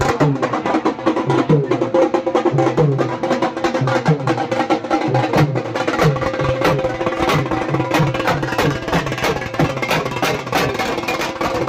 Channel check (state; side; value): identical; both; correlation 1.00